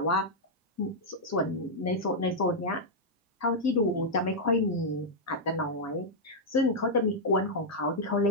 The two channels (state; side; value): normal; both; correlation -0.04